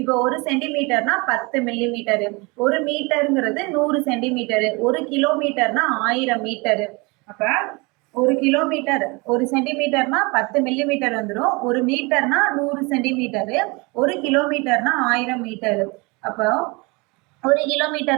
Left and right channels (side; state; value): left; quieter; 27.3 dB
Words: இப்போ 1 சென்டிமீட்டர்னா 10 மில்லி மீட்டரு, 1 மீட்டருங்கிறது 100 சென்டிமீட்டரு, 1 கிலோமீட்டர்னா 1000 மீட்டரு. அப்ப 1 கிலோமீட்டர் 1 சென்டிமீட்டர்னா 10 மில்லி மீட்டர் வந்துடும். 1 மீட்டர்னா 100 சென்டிமீட்டரு, 1 கிலோமீட்டர்னா 1000 மீட்டரு. அப்போ 1